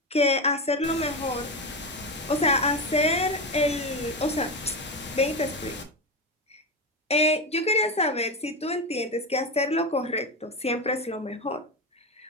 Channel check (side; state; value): both; normal; correlation 0.17